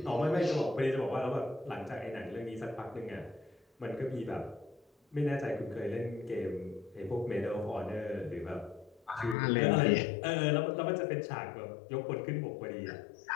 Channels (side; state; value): right; drops out; at 9.3 s